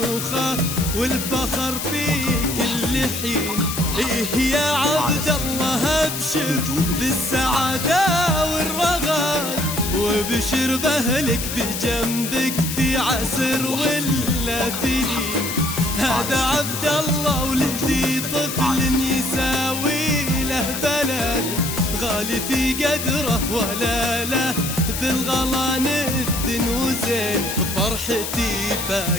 والفخر في كل حين. إيه يا عبد الله ابشر بالسعادة والرغد، وبشر بأهلك بجنبك في عسر ولا في لين. هذا عبد الله ولدي طفل يساوي له بلد، غالي في قدره ولا له بالغلا ندن وزين. فرحتي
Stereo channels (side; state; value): left; noise; hiss, 5 dB below the sound